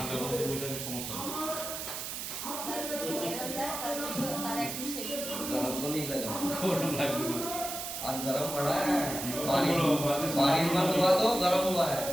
মধ্যে বসাতে সমস্যা নেই। তার একটু শেভিং गरम तो नहीं लगा গরম লাগবে না। आज गरम पड़ा है बारिश बारिश बंद हुआ तो गरम हुआ है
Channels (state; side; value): noise; right; hiss, 6 dB below the sound